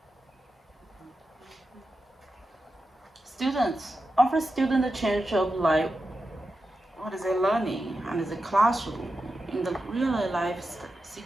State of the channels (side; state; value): both; normal; correlation 0.90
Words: ？Students offer students a chance to apply what is they learning and the classroom in the real life